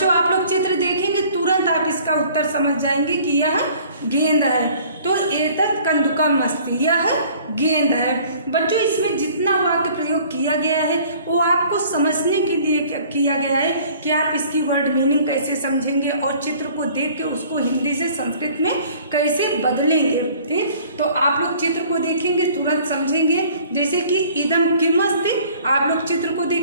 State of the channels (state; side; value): inverted; both; correlation -0.52